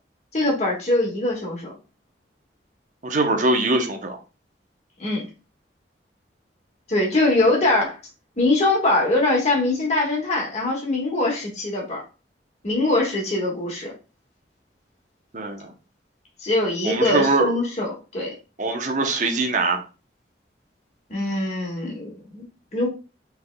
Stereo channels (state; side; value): normal; both; correlation 0.22